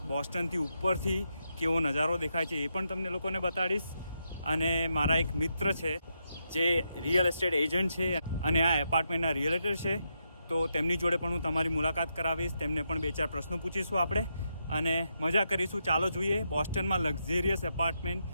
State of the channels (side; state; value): both; inverted; correlation -0.82